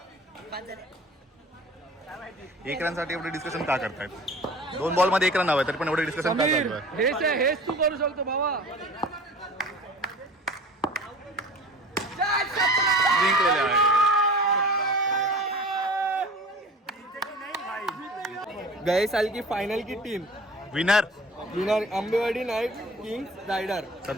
1 रन साठी एवढे डिस्कशन का करतायत? 2 बॉल मध्ये 1 रन हवं तरी पण एवढे डिस्कशन का चालू आहे? हेच तू करू शकतो भावा. जिंकलेले आहे. गए साल की फाइनल की team winner Ambewadi knight kings rider.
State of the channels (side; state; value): both; normal; correlation 0.41